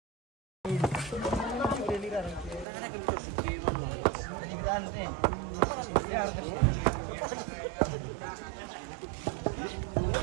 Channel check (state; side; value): drops out; left; at 2.7 s